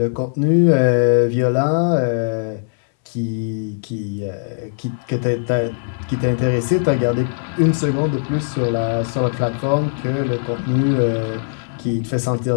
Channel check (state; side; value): silent; right; 63 dB below the other